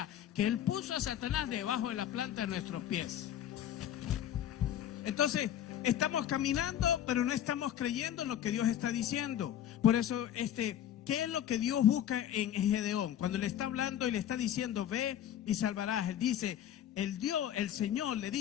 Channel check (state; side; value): quieter; right; 10.8 dB